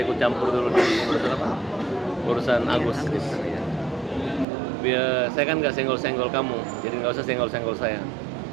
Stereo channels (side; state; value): left; drops out; at 4.5 s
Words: ikut campur dulu di urusan Agus. Biar saya kan nggak senggol-senggol kamu, jadi nggak usah senggol-senggol saya.